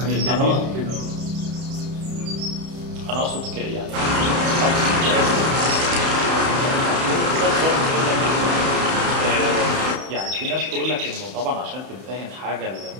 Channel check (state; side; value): late; left; 31 ms